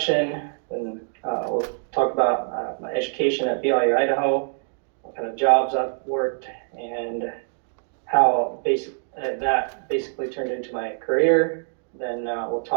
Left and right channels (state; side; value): silent; left; digital silence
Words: and we'll talk about my education at BYU Idaho, what kind of jobs I've worked, and how that basically turned into my career. Then we'll